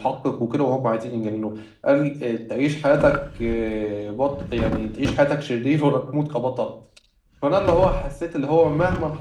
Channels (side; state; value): both; identical; correlation 1.00